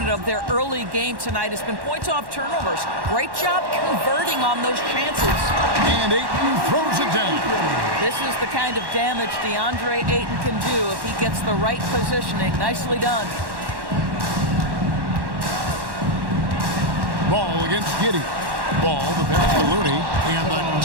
of their early game tonight has been points off turnovers. Great job converting on those chances. And Ayton throws it down. This is the kind of damage DeAndre Ayton can do if he gets the right positioning. Nicely done. Ball against Giddey. Ball, the pass to Looney, and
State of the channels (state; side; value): late; left; 1.1 ms